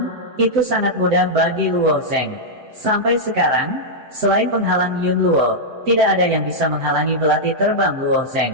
Itu sangat mudah bagi Luo Zeng. Sampai sekarang, selain penghalang Yun Luo, tidak ada yang bisa menghalangi belati terbang Luo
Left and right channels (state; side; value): late; left; 7.8 ms